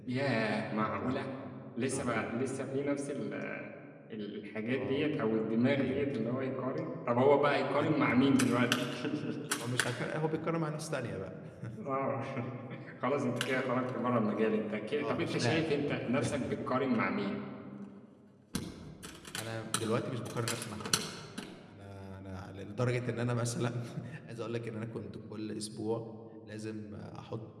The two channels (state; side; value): identical; both; correlation 1.00